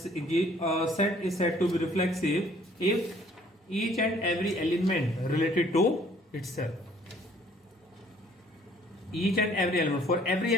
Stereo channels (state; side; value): normal; both; correlation 0.59